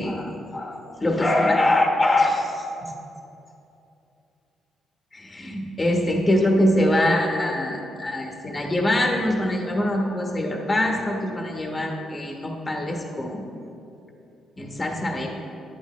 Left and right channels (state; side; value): normal; both; correlation 0.87